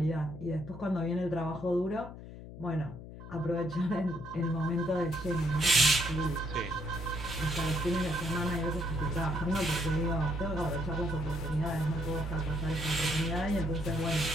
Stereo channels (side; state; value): left; noise; hum, 13 dB below the sound